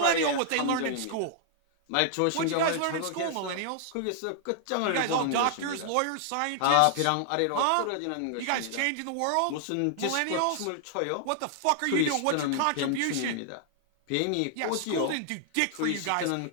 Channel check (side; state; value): both; different; correlation -0.01